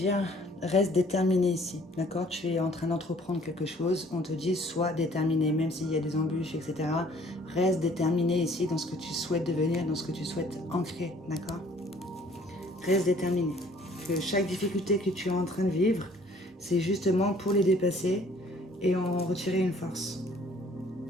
reste déterminé ici, d'accord? Tu es en train d'entreprendre quelque chose, on te dit, sois déterminé, même s'il y a des embûches, etc. Reste déterminé ici dans ce que tu souhaites devenir, dans ce que tu souhaites ancrer, d'accord? Reste déterminé. Que chaque difficulté que tu es en train de vivre, c'est justement pour les dépasser et en retirer une force.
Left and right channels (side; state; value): both; normal; correlation 0.57